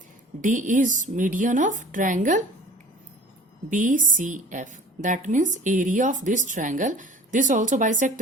D is median of triangle BCF. That means area of this triangle. This also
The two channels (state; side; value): normal; both; correlation 0.46